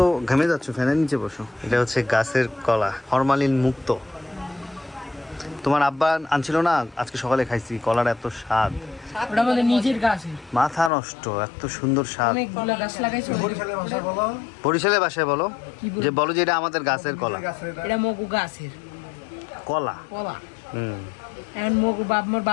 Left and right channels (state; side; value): drops out; right; at 10.9 s